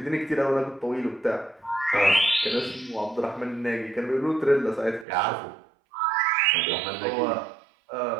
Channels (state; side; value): drops out; left; at 5.1 s